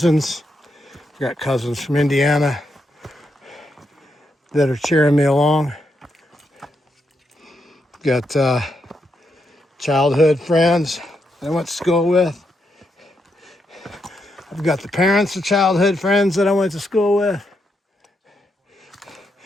I've got cousins from Indiana that are cheering me along. Got childhood friends that I went to school with. I've got the parents of childhood friends that I went to school with.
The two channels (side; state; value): both; normal; correlation 0.81